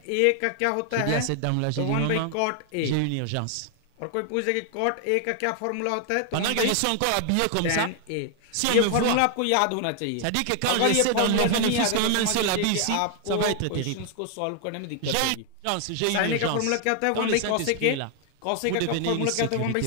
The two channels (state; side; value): different; both; correlation 0.00